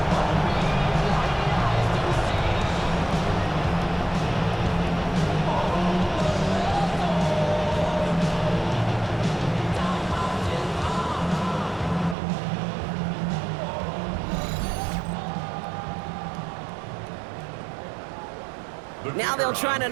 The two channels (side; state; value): left; drops out; at 12.2 s